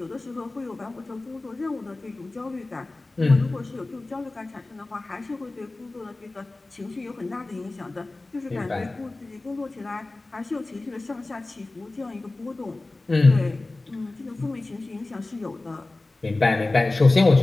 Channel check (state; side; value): quieter; right; 3.1 dB